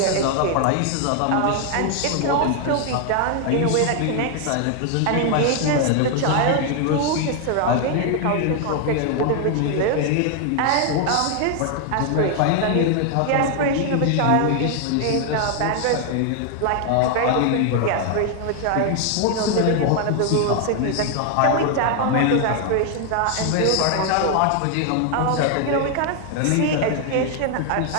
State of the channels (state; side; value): different; both; correlation 0.00